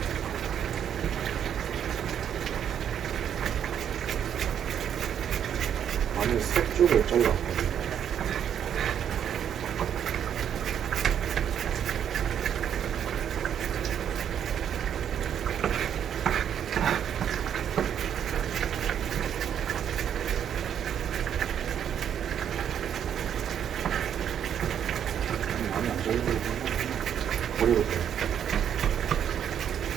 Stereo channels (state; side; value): quieter; left; 9.1 dB